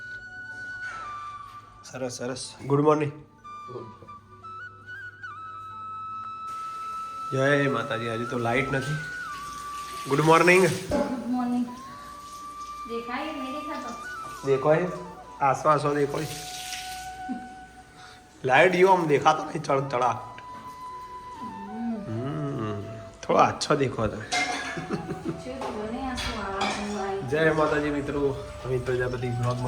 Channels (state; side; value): identical; both; correlation 1.00